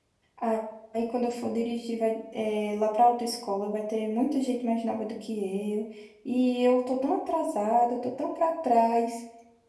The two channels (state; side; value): identical; both; correlation 1.00